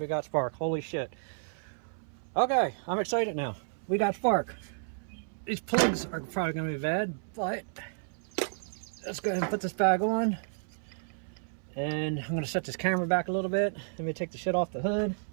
got spark. Holy shit. Okay, I'm excited now. We got spark. These plugs are probably gonna be bad, but let's go ahead and put this bag on. And I'm gonna set this camera back a little bit. Let me take the shit off the hood.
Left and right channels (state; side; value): silent; left; 57 dB below the other